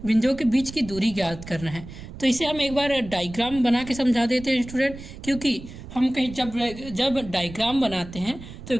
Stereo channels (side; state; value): right; noise; rumble, 14 dB below the sound